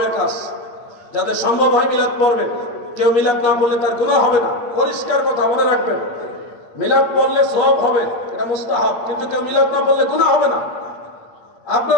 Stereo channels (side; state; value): right; late; 8.8 ms